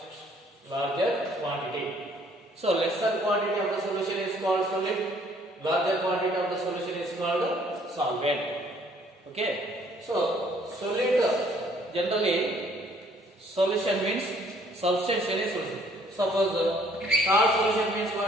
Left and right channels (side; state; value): both; normal; correlation 0.61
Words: larger quantity. So lesser quantity of the solution is called solid. Larger quantity of the solution is called solvent. Okay. So solid generally solution means substance any solution. Suppose salt solution means